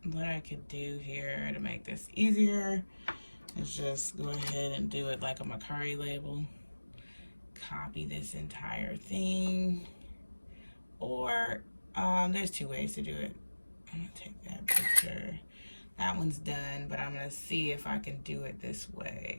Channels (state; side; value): inverted; both; correlation -1.00